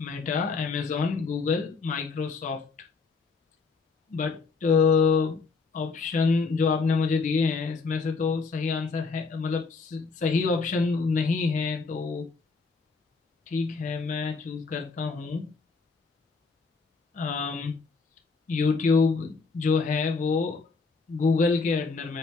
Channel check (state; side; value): quieter; right; 4.5 dB